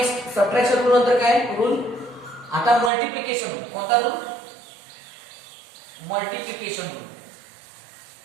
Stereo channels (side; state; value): left; drops out; at 2.9 s